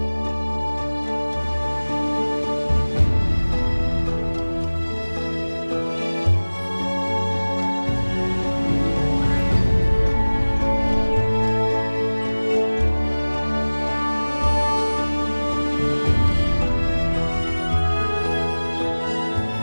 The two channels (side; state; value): both; inverted; correlation -1.00